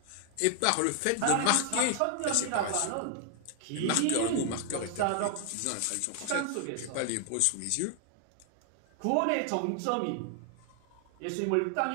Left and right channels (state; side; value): different; both; correlation 0.00